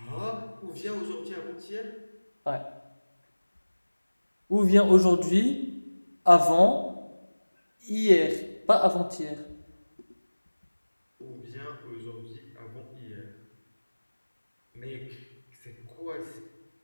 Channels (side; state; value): both; inverted; correlation -1.00